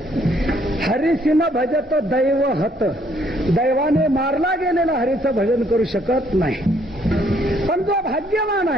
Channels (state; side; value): normal; both; correlation 0.67